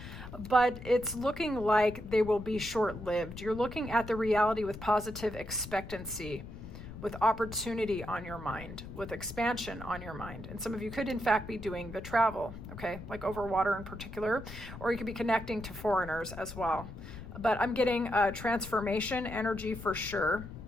but it's looking like they will be short-lived. You're looking at the reality with positive expectancy, with opportunity on your mind, with expansion on your mind. And some of you could in fact be doing the travel, okay, like over water in particular, or you could be connecting to foreigners as well. But I'm getting transformation energy for sure.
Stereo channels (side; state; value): left; noise; rumble, 12 dB below the sound